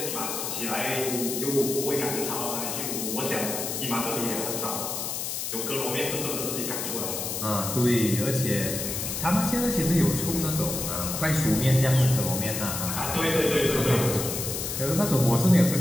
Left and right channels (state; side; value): noise; left; hiss, 3 dB below the sound